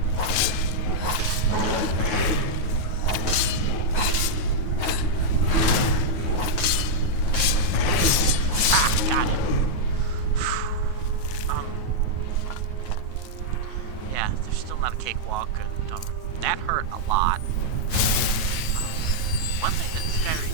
Cakewalk, and that hurt a lot. One thing that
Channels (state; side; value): late; right; 9.3 ms